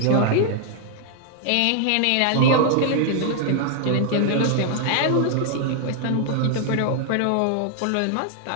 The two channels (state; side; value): different; both; correlation 0.00